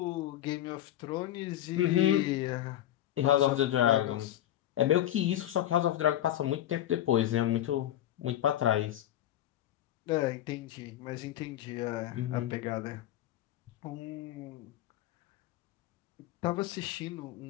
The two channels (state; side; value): quieter; right; 12.6 dB